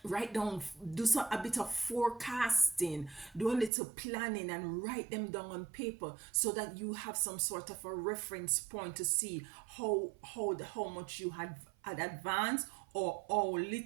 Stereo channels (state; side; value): drops out; left; at 3.7 s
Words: write down, do a bit of forecasting, do a little planning, and write them down on paper, so that you have some sort of a reference point to see how much you had advanced, or how